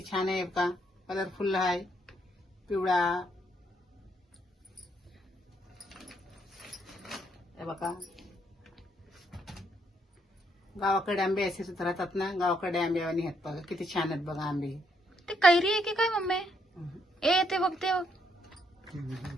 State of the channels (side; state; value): both; normal; correlation 0.73